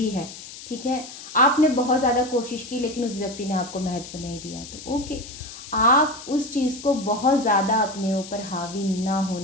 है, ठीक है, आपने बहुत ज़्यादा कोशिश की लेकिन उस व्यक्ति ने आपको महत्व नहीं दिया, तो ओके, आप उस चीज़ को बहुत ज़्यादा अपने ऊपर हावी ना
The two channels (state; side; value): noise; left; hiss, 14 dB below the sound